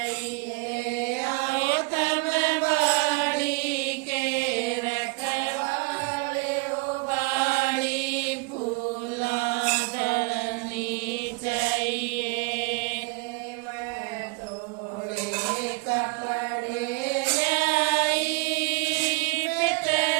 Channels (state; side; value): quieter; left; 28.2 dB